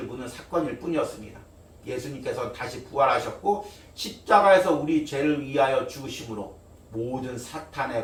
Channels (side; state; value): both; identical; correlation 1.00